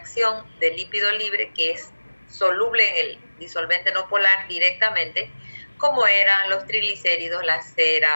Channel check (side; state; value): both; inverted; correlation -1.00